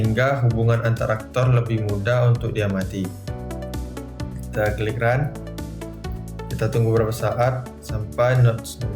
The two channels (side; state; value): both; identical; correlation 1.00